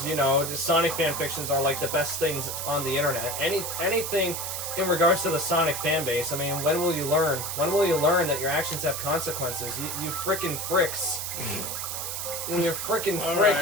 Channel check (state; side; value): noise; right; hiss, 4 dB below the sound